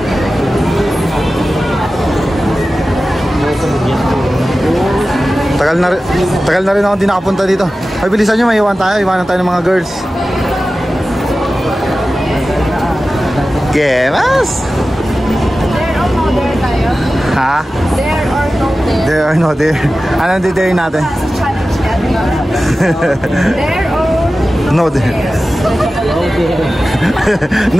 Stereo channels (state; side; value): normal; both; correlation 0.95